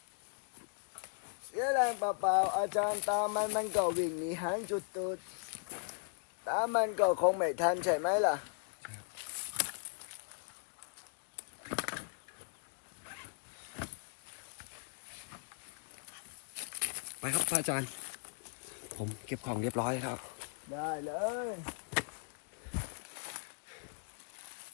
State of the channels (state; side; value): silent; right; 52 dB below the other